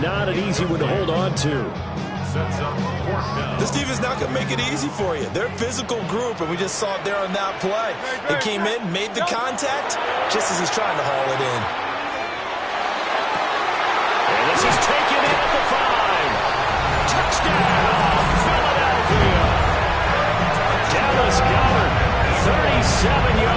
an easy one to hold on to. Sets up 4th down. This defense is not going to make it easy for you. They're a physical group, and we just saw it there on that play. They came in, made the contact, just as he's trying to haul it in. And this is taken in at the 5. Touchdown, Philadelphia. Dallas Goedert, 37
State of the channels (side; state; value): both; identical; correlation 1.00